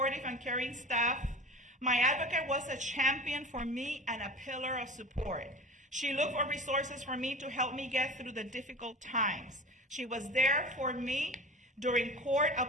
and caring staff. My advocate was a champion for me and a pillar of support. She looked for resources for me to help me get through the difficult times. She was there for me during court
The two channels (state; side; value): normal; both; correlation 0.34